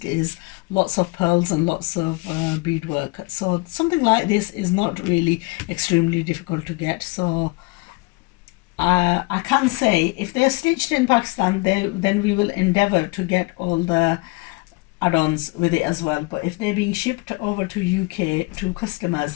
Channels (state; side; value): quieter; right; 26.0 dB